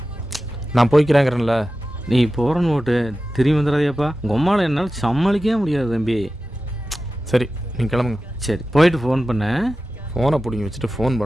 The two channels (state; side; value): normal; both; correlation 0.94